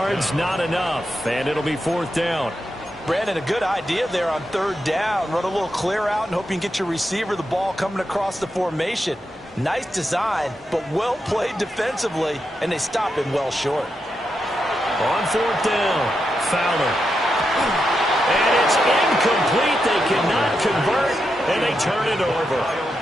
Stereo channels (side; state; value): both; normal; correlation 0.86